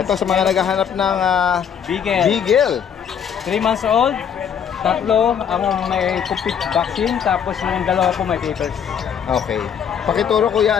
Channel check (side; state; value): right; quieter; 7.9 dB